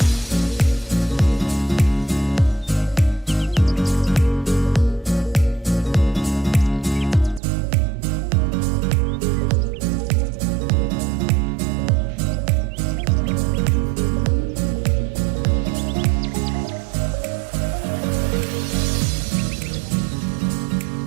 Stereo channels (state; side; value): drops out; left; at 7.4 s